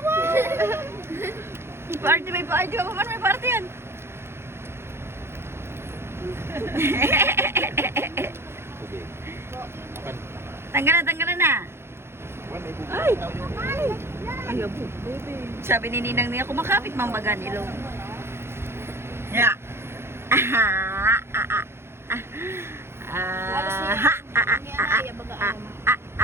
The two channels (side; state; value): left; late; 0.12 ms